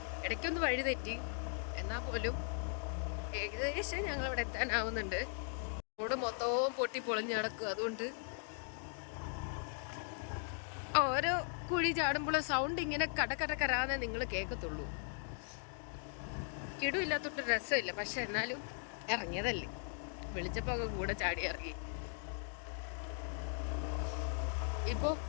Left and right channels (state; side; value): silent; right; 52 dB below the other